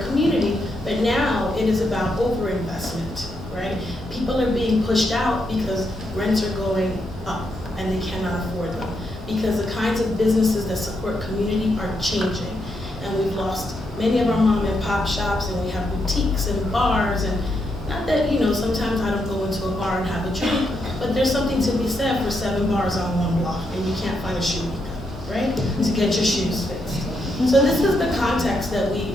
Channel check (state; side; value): normal; both; correlation 0.80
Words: community, but now it is about overinvestment, right? People are being pushed out because rents are going up and they cannot afford them, because the kinds of businesses that support community are changing. And we've lost many of our mom and pop shops, and we have boutiques and bars, and not that, you know, sometimes I don't go into a bar and have a drink, but there's something to be said for 7 bars on one block, and you can't find a shoe maker, right? To get your shoes fixed. So this is the context that we